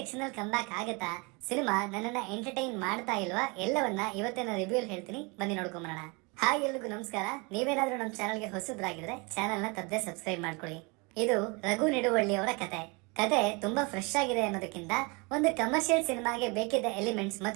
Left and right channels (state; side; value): quieter; left; 29.1 dB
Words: ಕಂಬ್ಯಾಕ್ ಆಗತ್ತಾ? ಸಿನಿಮಾ ನನ್ನನ್ನ ಎಂಟರ್ಟೈನ್ ಮಾಡ್ತಾ ಇಲ್ವಾ? ಎಲ್ಲವನ್ನ ಇವತ್ತಿನ ರಿವ್ಯೂ ಹೇಳ್ತೀನಿ, ಬನ್ನಿ ನೋಡ್ಕೊಂಬರೋಣ. ಹಾಯ್, ಎಲ್ರಿಗೂ ನಮಸ್ಕಾರ. ನೀವೇನಾದ್ರೂ ನಮ್ಮ ಚಾನಲ್ಗೆ ಹೊಸಬ್ರಾಗಿದ್ರೆ ಚಾನಲ್ ನ ತಪ್ಪದೆ ಸಬ್ಸ್ಕ್ರೈಬ್ ಮಾಡ್ಕೊಳ್ಳಿ. ಇದು ರಘು ನಿಡುವಳ್ಳಿ ಅವರ ಕತೆ ತುಂಬಾ ಫ್ರೆಶ್ ಆಗಿದೆ ಅನ್ನೋದಕ್ಕಿಂತ ಒಂದು ಕಮರ್ಷಿಯಲ್ ಸಿನಿಮಾಗೆ ಬೇಕಿದ್ದ ಎಲಿಮೆಂಟ್ಸ್